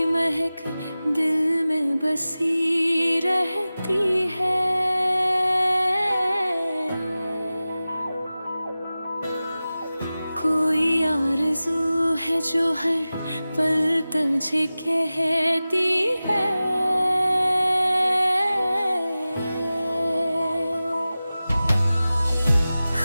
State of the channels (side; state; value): both; inverted; correlation -0.96